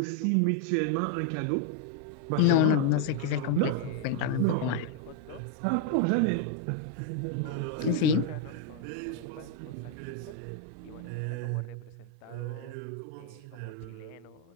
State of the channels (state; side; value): different; both; correlation 0.00